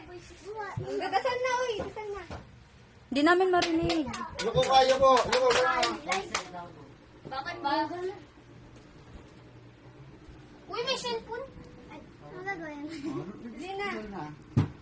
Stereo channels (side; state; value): both; identical; correlation 1.00